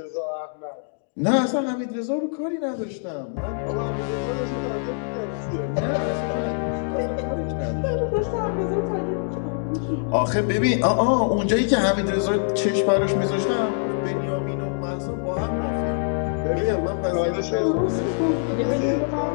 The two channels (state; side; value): silent; right; digital silence